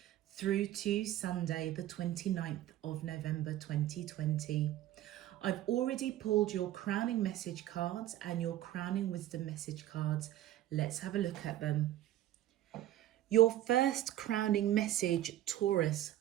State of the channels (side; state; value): left; quieter; 13.3 dB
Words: through to Sunday, the 29th of November 2020. I've already pulled your crowning message cards and your crowning wisdom message cards. Let's have a look at them. Your first crowning message, Taurus,